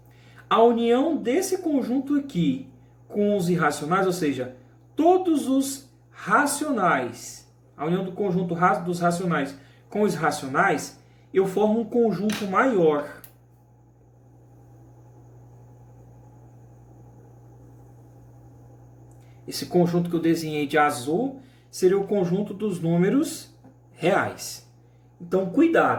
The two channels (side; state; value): both; identical; correlation 1.00